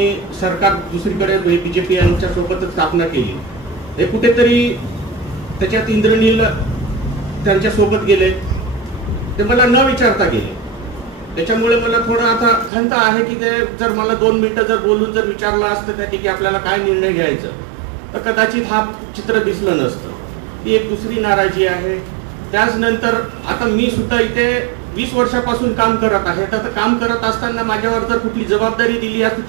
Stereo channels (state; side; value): drops out; left; at 12.7 s